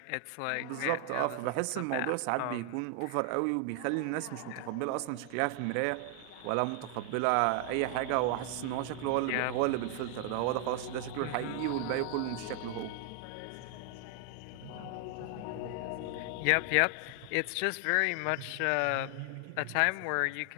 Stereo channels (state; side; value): different; both; correlation 0.00